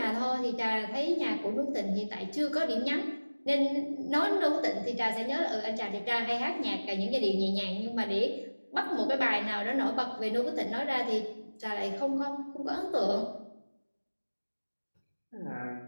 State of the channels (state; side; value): inverted; both; correlation -1.00